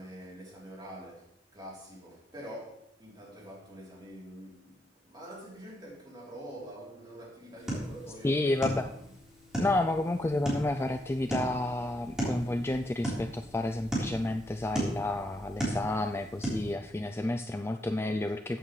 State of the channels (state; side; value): normal; both; correlation 0.79